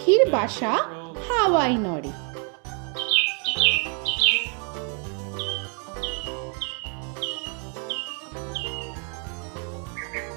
বাসা হাওয়ায় নড়ে।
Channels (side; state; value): left; quieter; 38.5 dB